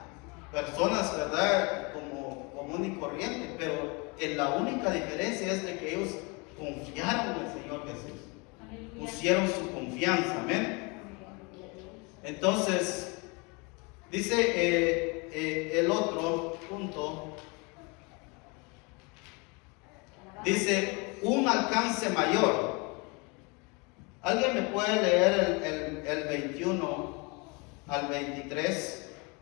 personas, ¿verdad?, como común y corriente, pero la única diferencia es de que ellos confiaron en el Señor Jesús, pusieron su confianza, amén. Entonces, dice el otro punto, dice un alcance mayor. ¿Alguien me puede leer el 21 al 23?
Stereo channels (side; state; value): right; quieter; 29.5 dB